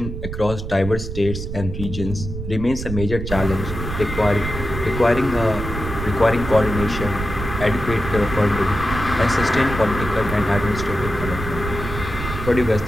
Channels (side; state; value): right; noise; rumble, 6 dB below the sound